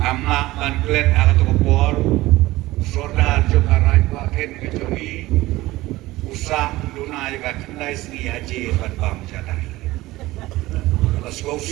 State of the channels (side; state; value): left; quieter; 18.2 dB